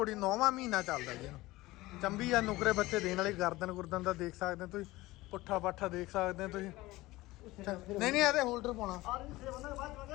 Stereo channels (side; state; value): right; quieter; 19.1 dB